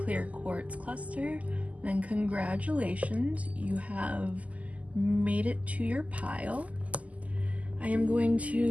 clear quartz cluster, then congratulations, you have made it to your pile. I am going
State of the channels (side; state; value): left; late; 0.071 ms